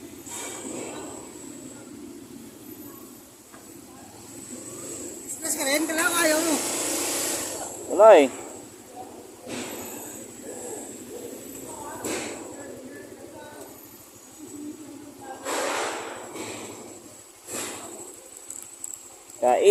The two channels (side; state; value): both; identical; correlation 1.00